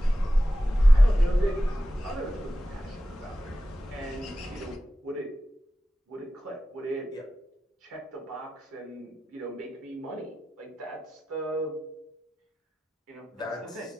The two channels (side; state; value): both; normal; correlation 0.94